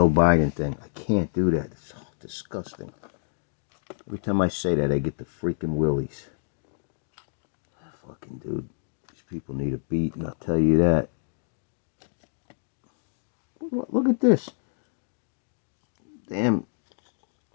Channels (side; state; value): right; silent; digital silence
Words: Biden thing. I can't do that. It's so disgusting. Every time I say that, I get the freaking willies. Fucking dude. These people need a beat, and I'll tell you that. Look at this. Damn